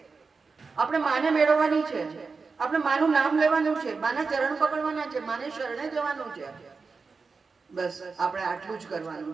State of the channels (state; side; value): quieter; left; 4.6 dB